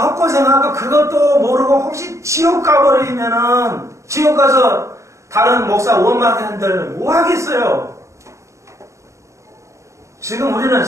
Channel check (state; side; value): late; left; 0.15 ms